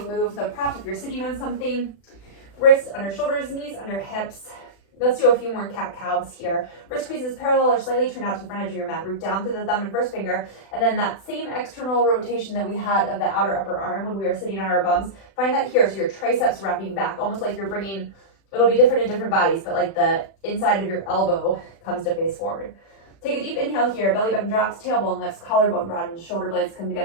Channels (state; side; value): late; right; 36 ms